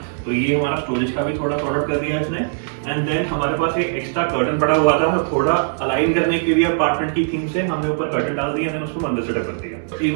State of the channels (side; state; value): left; silent; digital silence